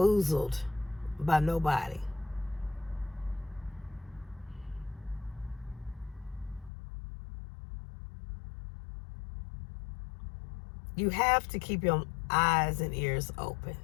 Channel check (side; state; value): right; drops out; at 6.7 s